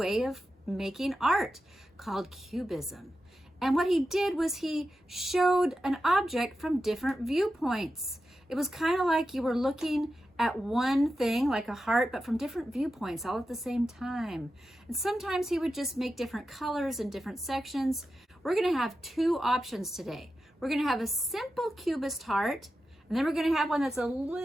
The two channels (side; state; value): both; normal; correlation 0.91